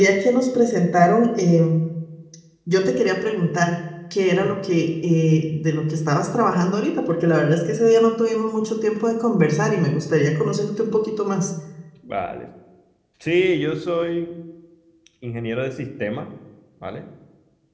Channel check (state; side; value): identical; both; correlation 1.00